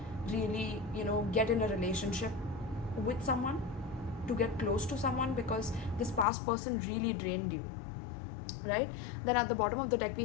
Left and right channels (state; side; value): drops out; right; at 6.2 s